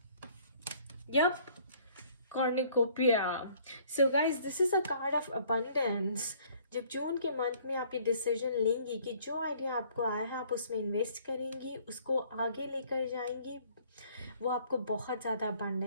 Yup, Cornucopia. So guys, this is a card of abundance. जब जून के मंथ में आप ये डिसीजन लेंगी कि जो आइडिया आपको आया है आप उसमें इन्वेस्ट करेंगी, उसको आगे लेकर जाएंगी, वो आपको बहुत ज़्यादा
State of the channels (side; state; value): both; inverted; correlation -0.58